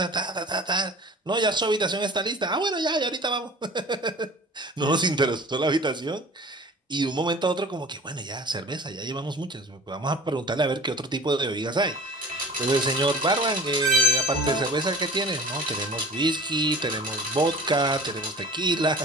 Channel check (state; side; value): normal; both; correlation 0.41